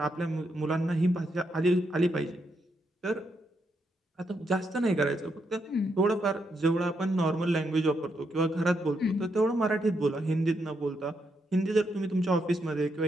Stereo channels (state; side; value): normal; both; correlation 0.80